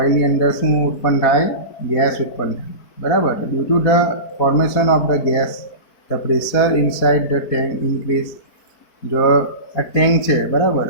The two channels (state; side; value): late; right; 4.2 ms